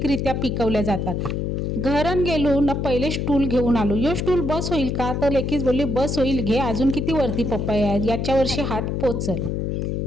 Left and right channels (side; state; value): left; noise; hum, 1 dB below the sound